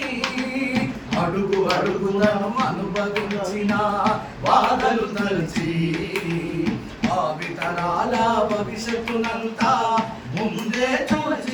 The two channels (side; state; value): both; identical; correlation 1.00